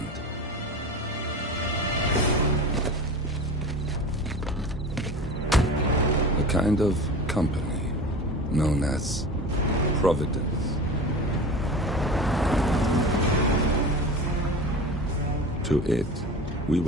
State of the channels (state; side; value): normal; both; correlation 0.33